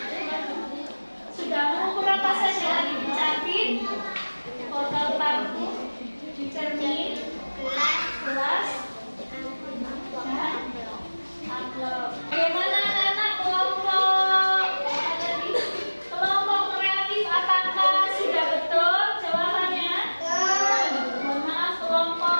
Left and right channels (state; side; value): inverted; both; correlation -1.00